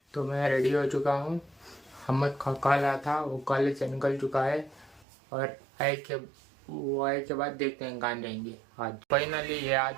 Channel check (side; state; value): left; drops out; at 5.1 s